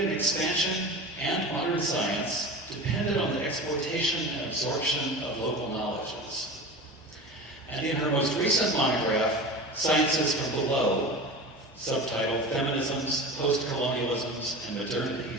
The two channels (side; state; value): both; normal; correlation 0.32